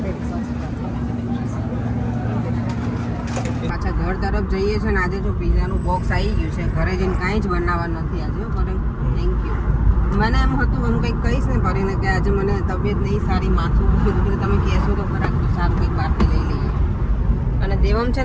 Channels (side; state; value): both; identical; correlation 1.00